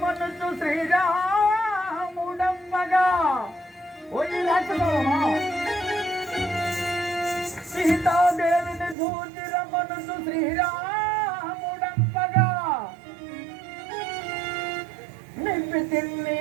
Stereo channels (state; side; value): drops out; left; at 9.0 s